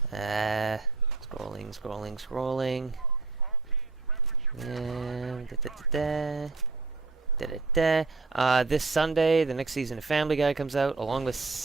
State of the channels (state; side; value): quieter; left; 3.8 dB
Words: This Sunday, the next season of Family Guy comes out, along